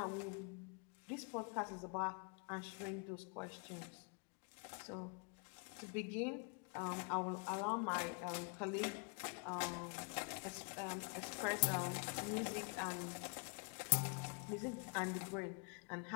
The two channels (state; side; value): quieter; right; 37.1 dB